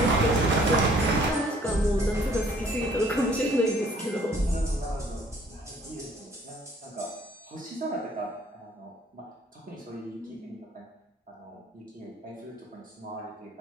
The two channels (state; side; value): normal; both; correlation 0.59